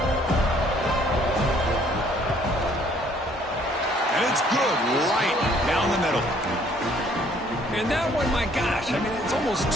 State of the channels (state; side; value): normal; both; correlation 0.61